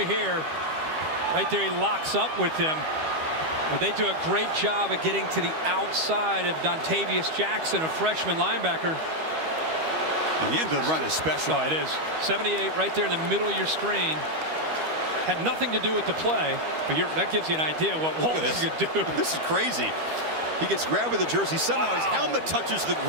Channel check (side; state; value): left; late; 13 ms